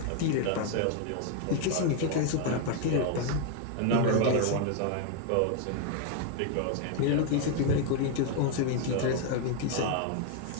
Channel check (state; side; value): different; both; correlation 0.01